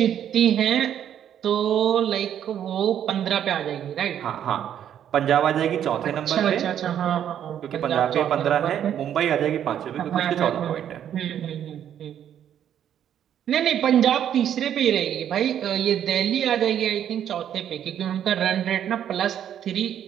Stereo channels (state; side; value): quieter; left; 9.9 dB